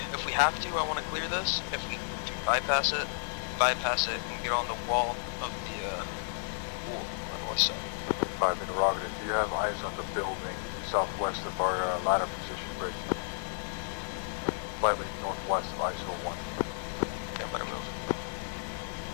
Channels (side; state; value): right; silent; 56 dB below the other